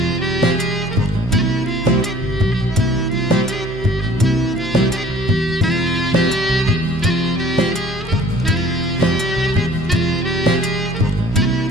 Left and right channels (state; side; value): noise; right; hum, 14 dB below the sound